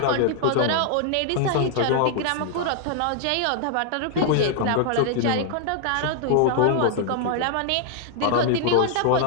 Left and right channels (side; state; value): both; different; correlation 0.00